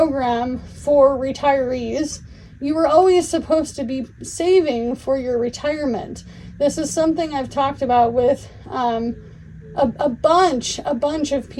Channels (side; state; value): both; identical; correlation 1.00